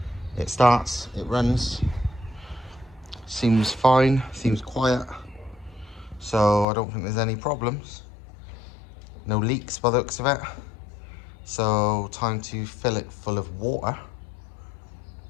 it starts, it runs, seems fine, seems quiet. so I don't think there's any problems. No leaks by the looks of it. So time to fill it full of water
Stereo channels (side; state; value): right; drops out; at 6.7 s